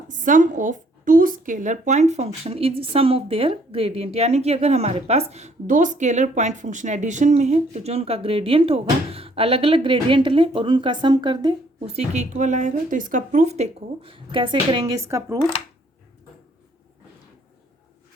sum of two scalar point function is sum of their gradient, यानी कि अगर हमारे पास दो स्केलर पॉइंट फंक्शन एडिशन में है तो जो उनका ग्रेडियंट होगा अलग अलग ग्रेडियंट लें और उनका सम कर दे, उसी के इक्वल आएगा। तो इसका प्रूफ देखो कैसे करेंगे। इसका proof,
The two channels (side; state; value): both; normal; correlation 0.64